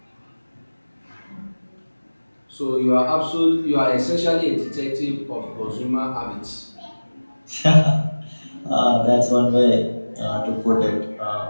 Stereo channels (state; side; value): inverted; both; correlation -1.00